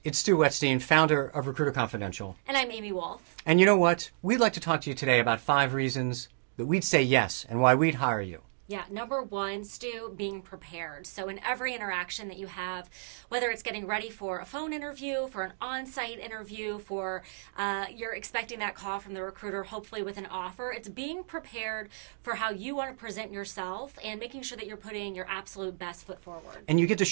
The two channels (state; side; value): silent; left; digital silence